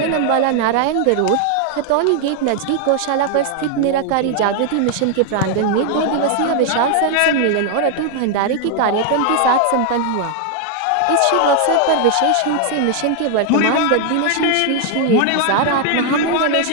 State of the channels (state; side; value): different; both; correlation 0.00